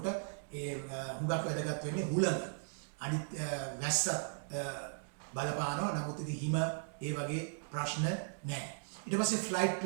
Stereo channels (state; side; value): silent; left; digital silence